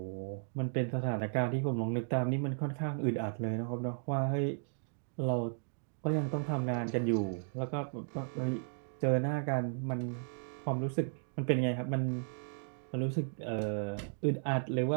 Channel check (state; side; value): silent; left; digital silence